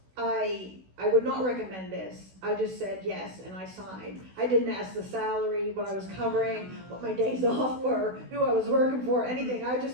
would not recommend this. I just said yes and I signed. I didn't ask the salary, what I was covering, what my days off were, who I was working for, anything. I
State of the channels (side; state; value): left; late; 16 ms